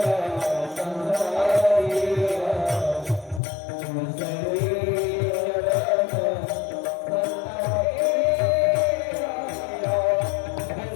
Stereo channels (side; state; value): right; drops out; at 3.4 s